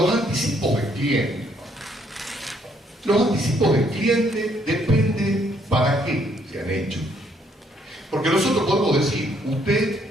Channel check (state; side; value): normal; both; correlation 0.68